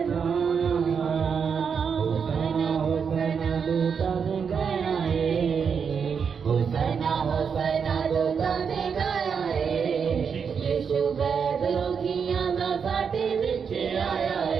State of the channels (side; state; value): left; quieter; 6.4 dB